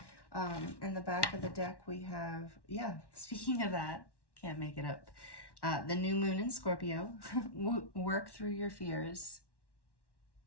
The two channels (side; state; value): right; late; 1.1 ms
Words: In the back of the deck, we have, yeah, speaking of that, can't make it up. The new moon in Scorpio. Work through your fears.